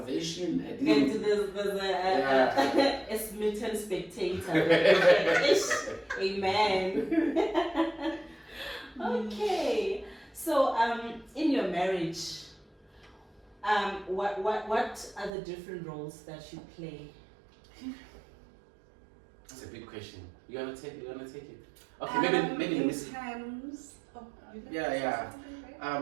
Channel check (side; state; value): left; drops out; at 15.3 s